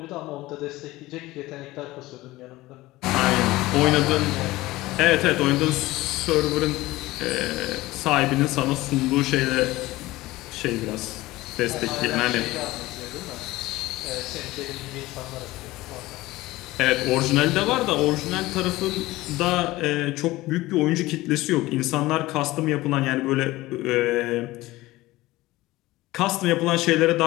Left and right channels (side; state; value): right; quieter; 18.5 dB